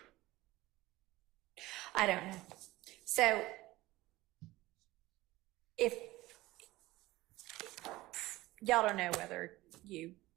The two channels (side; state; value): left; quieter; 18.4 dB